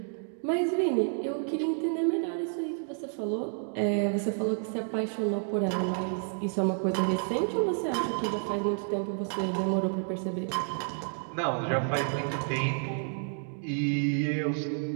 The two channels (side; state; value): left; silent; 58 dB below the other